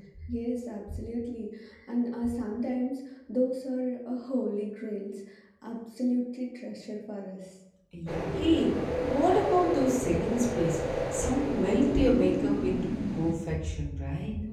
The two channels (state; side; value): identical; both; correlation 1.00